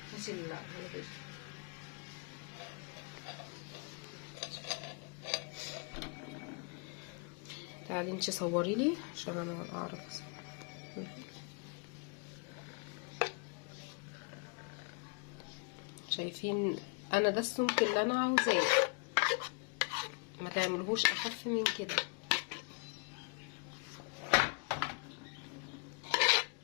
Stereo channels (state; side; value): quieter; right; 34.3 dB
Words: هاتي الهلبية. تعالي انتي صوري لي عشان انا اعرف. شايفين انا ده السمك اللي انا عاوزاه، ما تعملهوش اخف من كده.